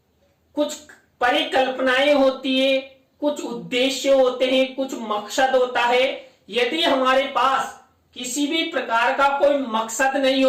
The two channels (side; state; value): both; identical; correlation 1.00